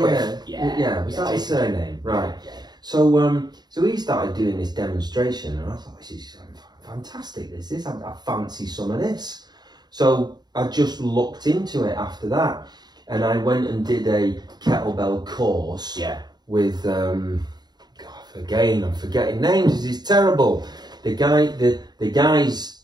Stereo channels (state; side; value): late; left; 0.20 ms